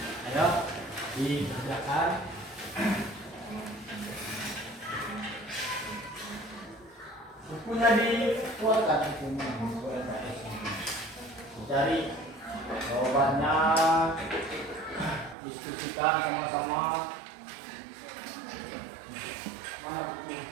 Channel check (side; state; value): left; drops out; at 15.4 s